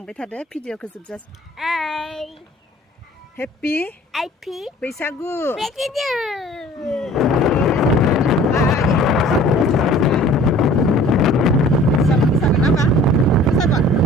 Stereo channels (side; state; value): both; normal; correlation 0.49